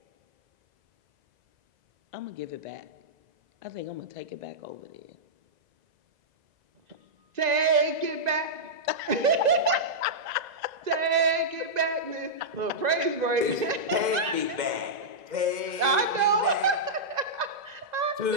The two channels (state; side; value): late; left; 2.0 ms